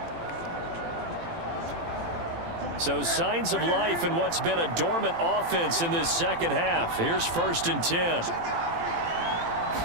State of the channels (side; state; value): left; late; 18 ms